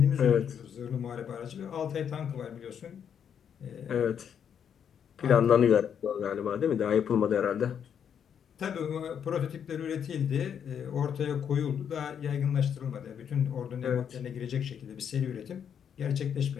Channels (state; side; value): quieter; right; 8.1 dB